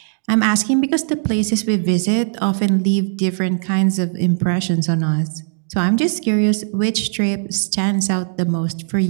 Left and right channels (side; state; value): left; silent; digital silence